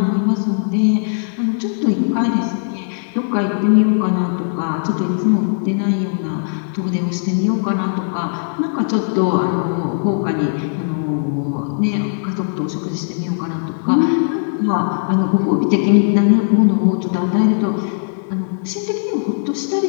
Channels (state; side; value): silent; right; 67 dB below the other